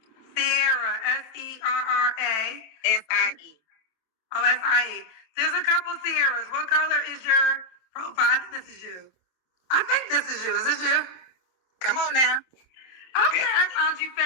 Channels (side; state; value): right; late; 26 ms